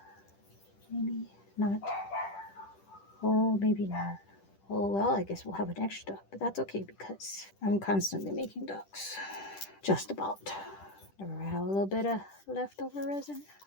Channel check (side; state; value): right; late; 10 ms